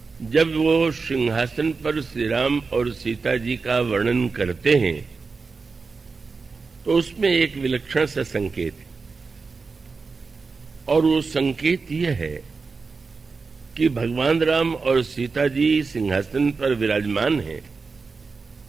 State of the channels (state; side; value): quieter; left; 4.5 dB